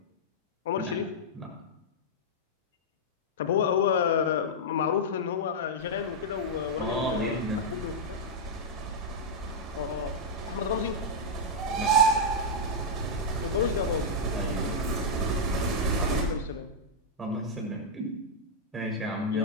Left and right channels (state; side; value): normal; both; correlation -0.06